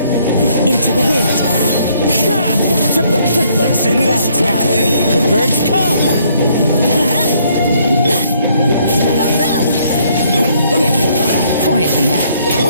Into the wind. Let's end this quickly. The birds come. Quietly now.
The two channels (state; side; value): inverted; both; correlation -0.66